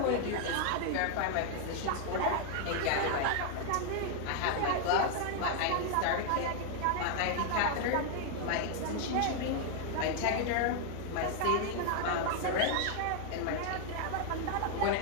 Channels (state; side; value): different; both; correlation 0.00